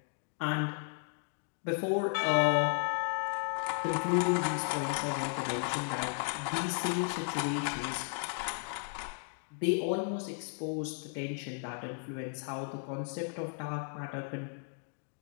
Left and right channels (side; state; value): right; silent; 55 dB below the other